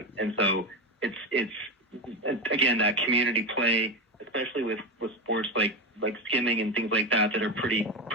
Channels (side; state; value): both; normal; correlation 0.17